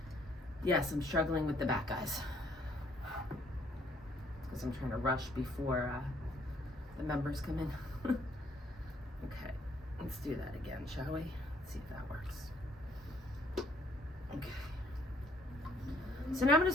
Yes, I'm struggling with the back, guys. Because I'm trying to rush before the members come in. Okay. Let's do that again, shall we? Let's see if that works. Okay. So now I'm going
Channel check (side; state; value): both; normal; correlation 0.65